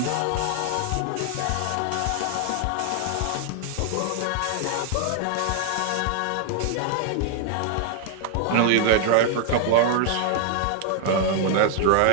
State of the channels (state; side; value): different; both; correlation 0.00